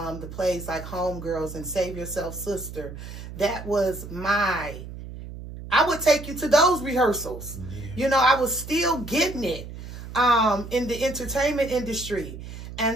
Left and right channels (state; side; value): noise; right; hum, 11 dB below the sound